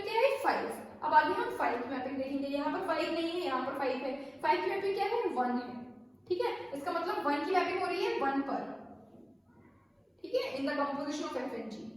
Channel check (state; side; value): identical; both; correlation 1.00